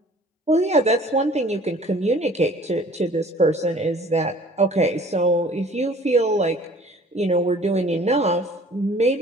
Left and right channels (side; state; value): both; normal; correlation 0.51